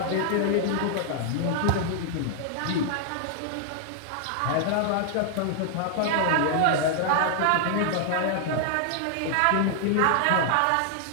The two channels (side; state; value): both; different; correlation 0.00